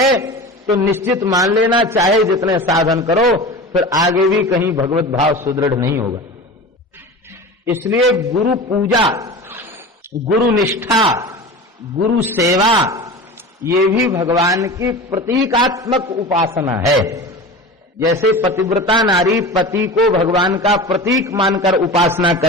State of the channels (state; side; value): normal; both; correlation 0.32